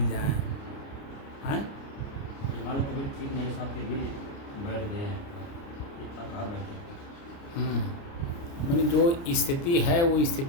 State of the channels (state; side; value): late; right; 29 ms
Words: जाए, हैं? हमारी तबीयत ठीक नहीं साहब, फिर भी बैठ गए हैं, कहाँ बैठे। मैंने जो स्थिति है वो